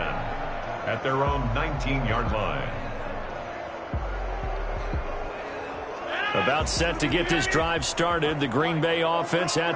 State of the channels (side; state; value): both; identical; correlation 1.00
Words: their own 19-yard line. About set to get this drive started. The Green Bay offense